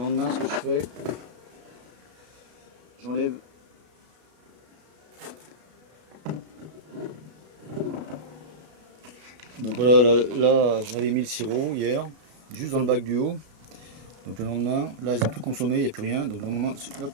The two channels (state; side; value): late; left; 33 ms